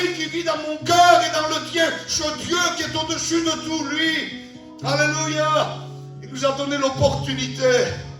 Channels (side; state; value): both; identical; correlation 1.00